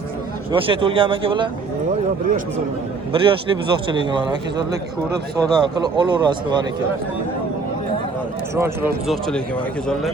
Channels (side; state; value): left; quieter; 4.3 dB